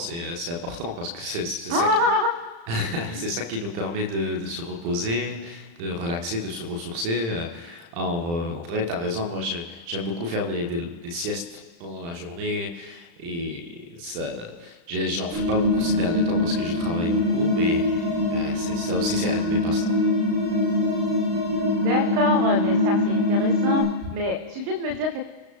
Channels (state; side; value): late; left; 35 ms